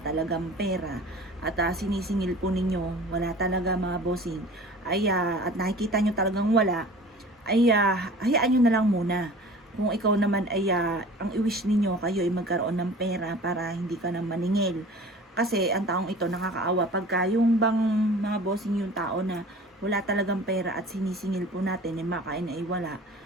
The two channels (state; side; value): normal; both; correlation 0.43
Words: pera at sinisingil po ninyo, wala talaga mga bossing, at nakikita nyo talagang wala, hayaan nyo na lang muna. Kung ikaw naman ang i-wish ninyo kayo ay magkaroon ng pera para hindi ka na maningil. Kasi ang taong ito nakakaawa pagka yung bang mga bossing yung tao na wala talagang pera at sinisingil po natin makain ay wala.